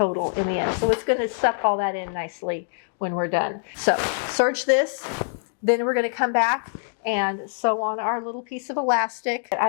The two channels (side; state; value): right; silent; digital silence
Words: in the end. So it's going to suck all that in nicely when we're done. So serge this, then we're going to come back and sew on our little piece of elastic.